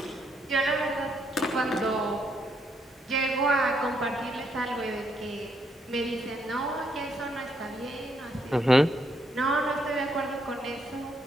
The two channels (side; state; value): both; normal; correlation 0.75